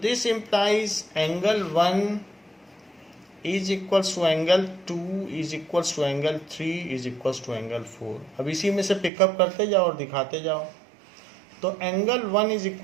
this implies angle 1 is equals to angle 2 is equals to angle 3 is equals to angle 4। अब इसी में से पिकअप करते जाओ और दिखाते जाओ। तो angle 1 is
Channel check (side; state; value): left; drops out; at 9.1 s